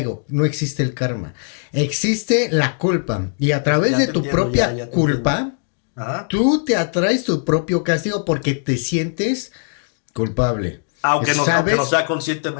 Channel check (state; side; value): silent; right; digital silence